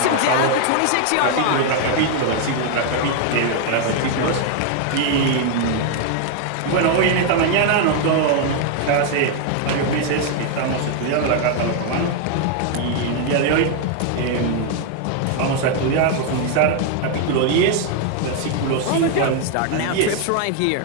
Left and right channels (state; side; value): different; both; correlation 0.00